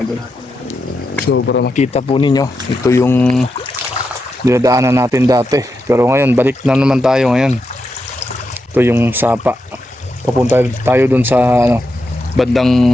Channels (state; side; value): normal; both; correlation 0.86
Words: idol. So para makita po ninyo, ito yung dinadaanan natin dati, pero ngayon balik na naman tayo ngayon. Ito yung sapa, papunta tayo dun sa